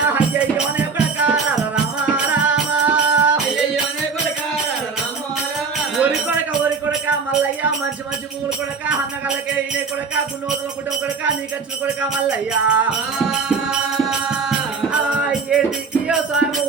మల్లయ్య మంచి మంచి పూలు కొడక అన్నగల్లకే ఇనే కొడక గున్నోతుల కుటుంబ కొడక నీకచ్చిన కొడక మల్లయ్య ఏంటికి సాము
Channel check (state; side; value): quieter; left; 5.0 dB